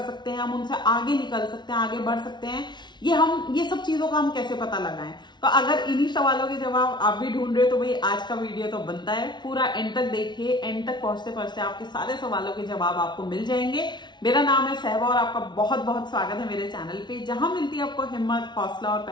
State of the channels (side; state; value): right; late; 0.21 ms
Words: हैं, हम उनसे आगे निकल सकते हैं, आगे बढ़ सकते हैं। ये सब चीजों का हम कैसे पता लगाएं? तो अगर इन्हीं सवालों के जवाब आप भी ढूंढ रहे हो तो भाई आज का वीडियो तो बनता है, पूरा एंड तक देखिए। एंड तक पहुंचते पहुंचते आपके सारे सवालों के जवाब आपको मिल जाएंगे। मेरा नाम है सहबा और आपका बहुत बहुत स्वागत है मेरे चैनल पे, जहां मिलती है आपको हिम्मत, हौसला और